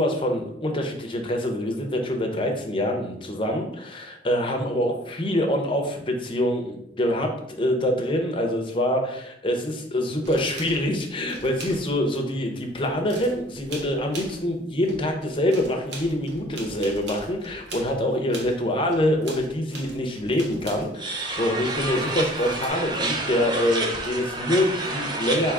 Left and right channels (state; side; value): normal; both; correlation 0.52